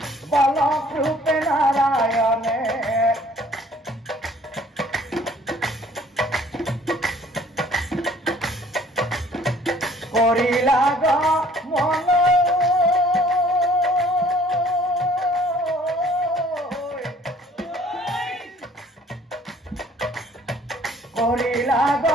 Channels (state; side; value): normal; both; correlation 0.56